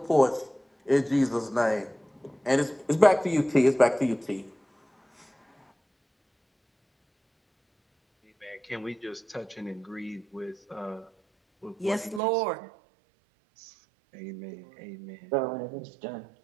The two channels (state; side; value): drops out; left; at 12.2 s